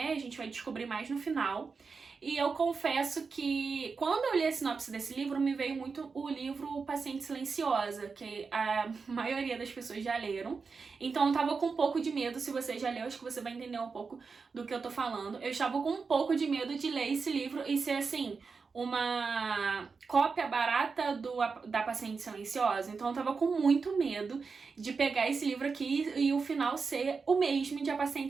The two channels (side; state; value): left; quieter; 4.9 dB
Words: a gente vai descobrir mais no final. E eu confesso que quando eu li a sinopse desse livro, me veio muito o livro Paciente Silenciosa, que a maioria das pessoas já leram. Então eu tava com um pouco de medo. Se você já leu, acho que você vai entender um pouco do que eu tô falando. Eu estava com um pouco de medo de ler esse livro e ser assim, uma cópia barata da Paciente Silenciosa. Então eu tava com muito medo de pegar esse livro aqui e o final ser o mesmo de A